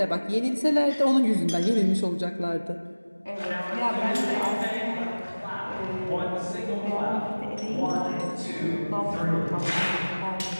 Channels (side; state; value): both; inverted; correlation -1.00